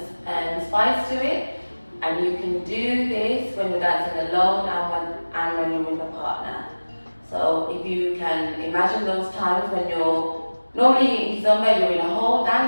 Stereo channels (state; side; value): inverted; both; correlation -1.00